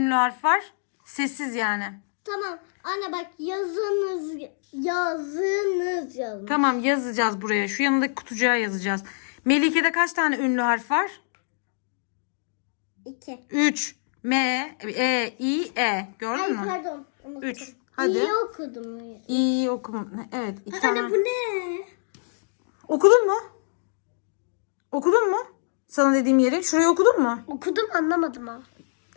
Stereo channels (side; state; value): right; silent; digital silence